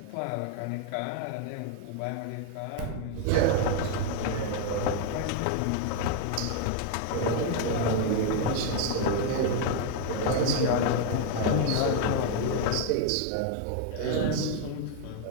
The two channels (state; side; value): different; both; correlation 0.00